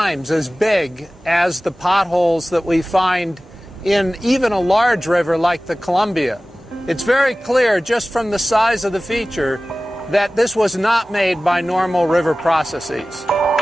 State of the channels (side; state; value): both; normal; correlation 0.97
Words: as big as the potholes that we find in even a large river like the Columbia. It's very clear just from the size of the feature that this was not made by normal river processes.